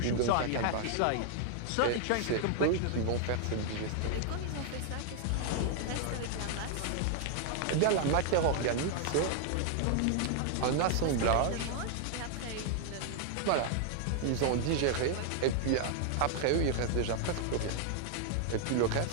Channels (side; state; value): both; different; correlation 0.00